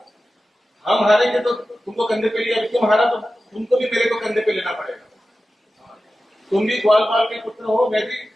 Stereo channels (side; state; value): both; normal; correlation 0.94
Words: हम हारेंगे तो तुमको कंधे पे लिया, तुम हारा तो तुमको भी मेरे को कंधे पे लेना पड़ेगा। तुम भी ग्वालपाल के पुत्र हो, मैं भी